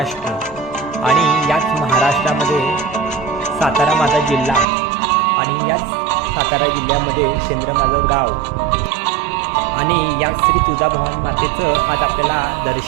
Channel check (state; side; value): drops out; left; at 4.7 s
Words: आणि याच महाराष्ट्रामध्ये सातारा माझा जिल्हा आणि याच सातारा जिल्ह्यामध्ये शेंद्र माझं गाव आणि या श्री तुळजाभवानी मातेचं आज आपल्याला